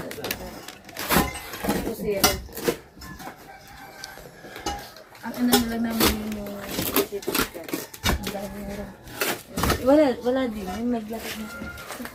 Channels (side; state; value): both; identical; correlation 1.00